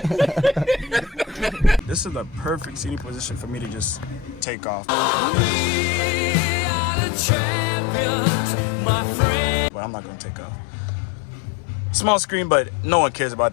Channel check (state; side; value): drops out; right; at 4.5 s